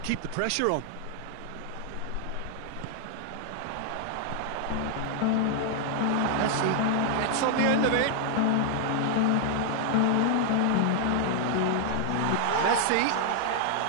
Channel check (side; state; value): both; different; correlation 0.00